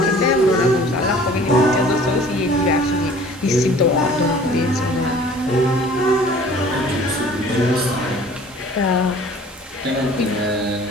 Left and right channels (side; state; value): both; normal; correlation 0.49